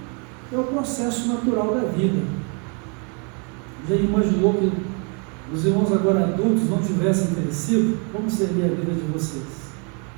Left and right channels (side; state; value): left; quieter; 36.4 dB